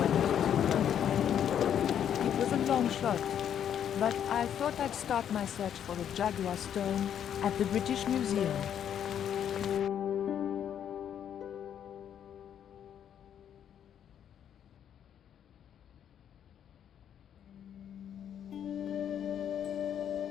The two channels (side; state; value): right; quieter; 9.3 dB